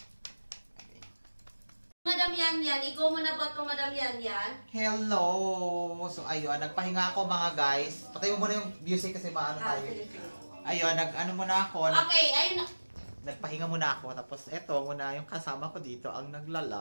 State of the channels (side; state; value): both; inverted; correlation -1.00